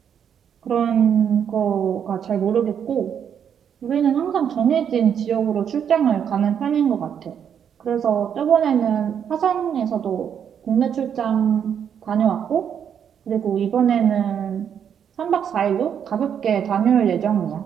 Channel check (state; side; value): quieter; left; 8.3 dB